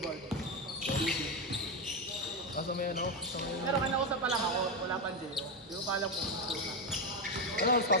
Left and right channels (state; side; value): normal; both; correlation 0.10